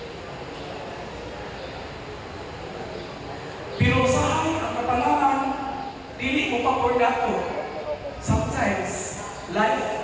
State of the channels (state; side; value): identical; both; correlation 1.00